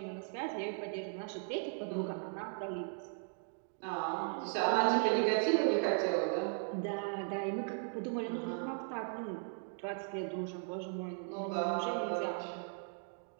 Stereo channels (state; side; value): silent; left; 53 dB below the other